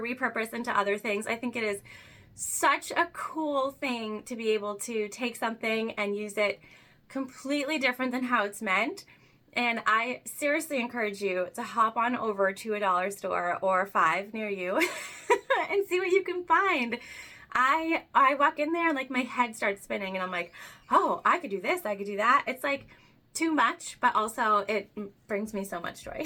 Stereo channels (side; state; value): both; identical; correlation 1.00